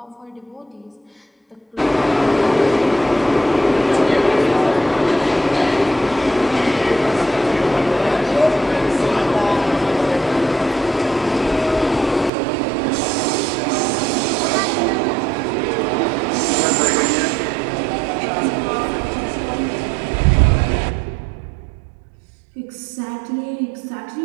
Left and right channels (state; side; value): drops out; left; at 12.3 s